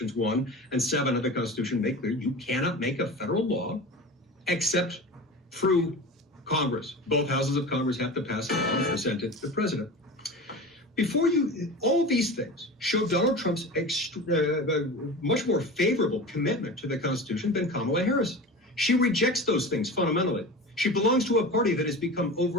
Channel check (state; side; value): normal; both; correlation 0.32